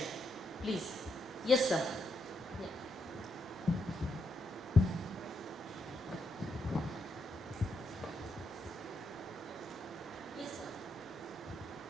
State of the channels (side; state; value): both; normal; correlation 0.80